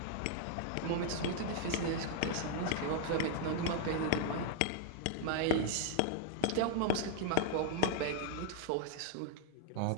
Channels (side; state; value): both; different; correlation 0.00